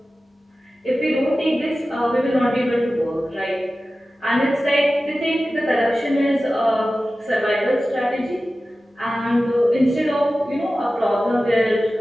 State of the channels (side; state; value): both; normal; correlation 0.95